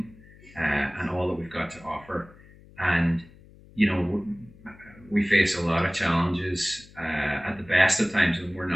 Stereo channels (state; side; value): noise; left; hum, 23 dB below the sound